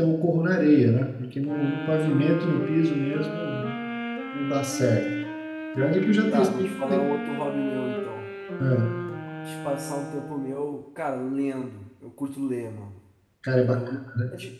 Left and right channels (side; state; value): both; identical; correlation 1.00